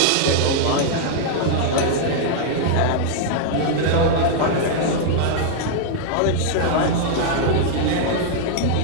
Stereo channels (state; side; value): different; both; correlation -0.01